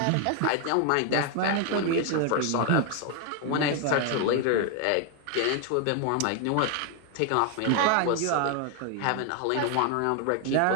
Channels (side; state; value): both; different; correlation 0.01